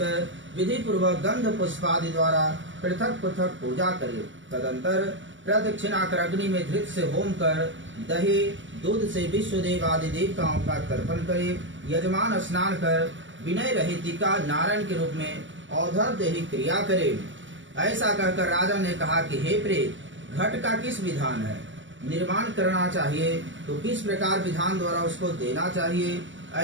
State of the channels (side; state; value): left; late; 0.55 ms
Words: विधि पूर्वक गंध पुष्पादि द्वारा पृथक पृथक पूजा करे। तदंतर प्रदक्षिणा कर अग्नि में धृत से होम कर दही दूध से विश्वदेव आदि देवताओं का तर्पण करे। यजमान स्नान कर विनय रहित का नारायण के रूप में औधर देही क्रिया करे। ऐसा कहकर राजा ने कहा कि हे प्रेत, घट का किस विधान है? निर्माण करना चाहिए तो किस प्रकार विधान द्वारा उसको देना चाहिए?